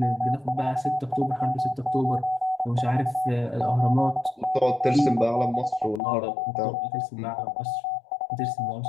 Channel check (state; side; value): drops out; right; at 6.0 s